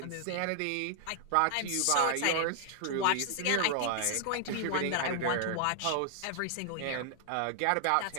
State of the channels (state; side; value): different; both; correlation 0.00